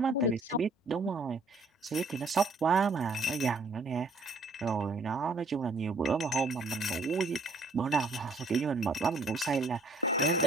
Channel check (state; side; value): quieter; left; 3.4 dB